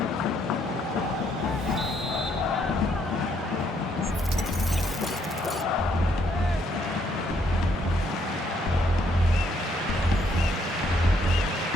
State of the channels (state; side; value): normal; both; correlation 0.71